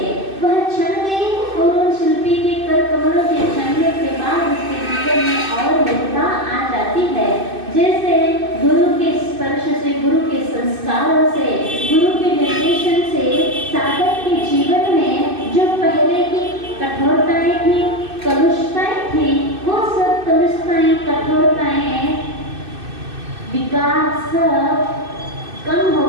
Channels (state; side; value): late; left; 2.6 ms